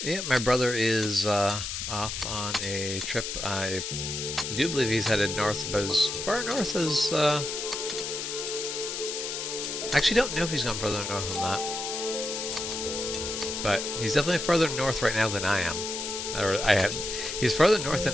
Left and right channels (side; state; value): left; noise; hiss, 4 dB below the sound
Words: Yeah, my brother is off on a trip. I do believe he's headed north, but as far north as I actually don't know if he's gone further north than that. But he's definitely further north right now than I am. Or I have. He's further north